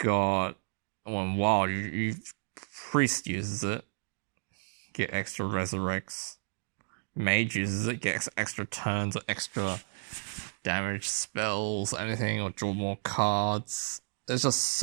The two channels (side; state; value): left; silent; digital silence